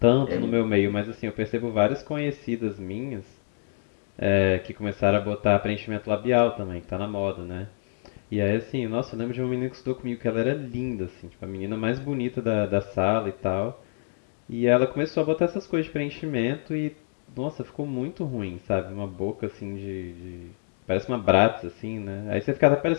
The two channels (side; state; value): right; silent; digital silence